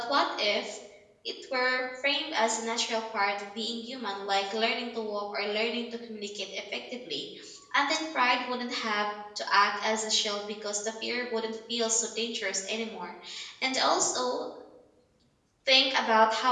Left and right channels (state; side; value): identical; both; correlation 1.00